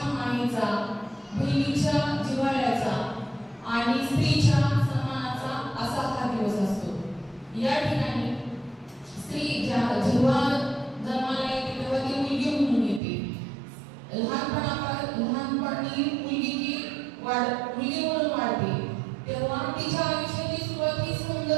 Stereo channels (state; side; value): drops out; left; at 13.0 s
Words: मायेचा, बहिणीच्या जिव्हाळ्याचा आणि स्त्रीच्या सन्मानाचा असा हा दिवस असतो. या ठिकाणी स्त्री जेव्हा जन्माला येते तेव्हा ती मुलगी म्हणून येते. लहानपणी मुलगी म्हणून वाढते, तेव्हा तिच्या आयुष्याची सुरुवात ही